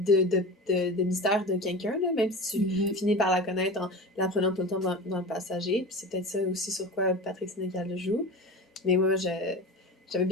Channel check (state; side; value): normal; both; correlation 0.32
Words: mystère de quelqu'un, là, même si tu finis par la connaître en la prenant tout le temps dans le passager. Puis c'est peut-être ça aussi sur quoi Patrick Sénécal le joue. Mais moi, j'avais